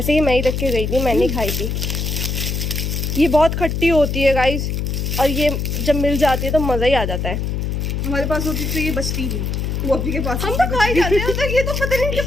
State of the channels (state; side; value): noise; left; hum, 2 dB below the sound